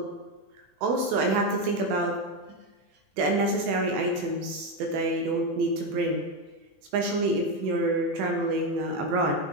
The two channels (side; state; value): left; late; 21 ms